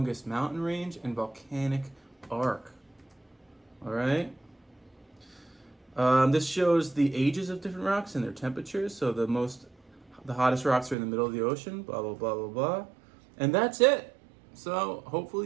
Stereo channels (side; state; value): left; drops out; at 11.0 s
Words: mountain range and volcanic arc. All right. This shows the ages of different rocks and their temperatures. So the hottest rocks are in the middle of the ocean. Blah blah blah blah blah. And that's it. So